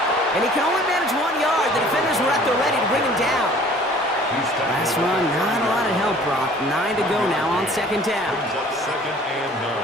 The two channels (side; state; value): both; normal; correlation 0.51